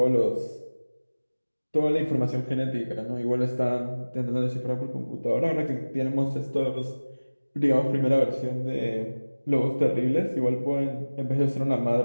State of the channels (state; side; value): inverted; both; correlation -1.00